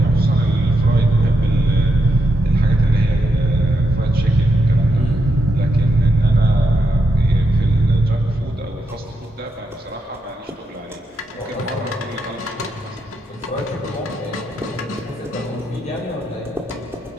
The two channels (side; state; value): both; normal; correlation 0.83